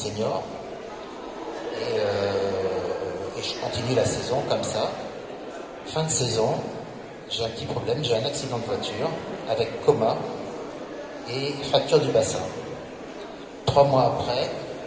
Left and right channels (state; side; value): identical; both; correlation 1.00